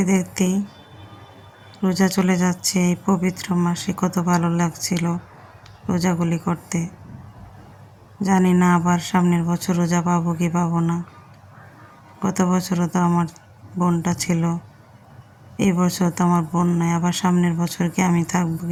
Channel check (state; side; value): identical; both; correlation 1.00